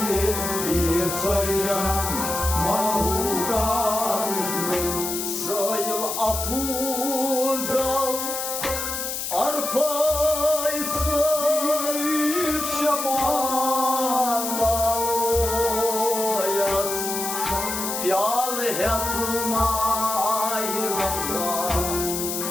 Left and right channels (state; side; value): noise; left; hiss, 3 dB below the sound